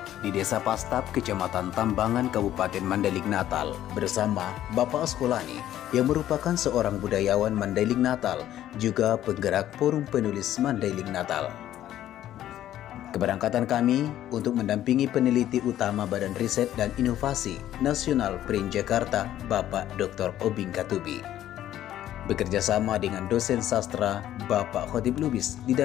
di Desa Pastap, Kecamatan Tambangan, Kabupaten Mandailing Natal bersama Bapak Askolani yang merupakan seorang budayawan Mandailing Natal, juga penggerak Forum Penulis Mandailing Natal. Keberangkatan kami untuk mendampingi peneliti utama Badan Riset dan Inovasi Nasional PRIN Jakarta, Bapak Dr. Obing Katubi. Bekerja sama dengan dosen sastra Bapak Khotib Lubis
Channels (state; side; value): quieter; right; 12.4 dB